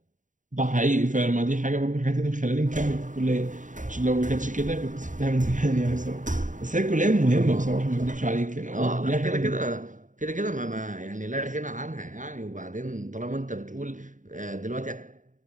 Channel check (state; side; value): late; left; 0.37 ms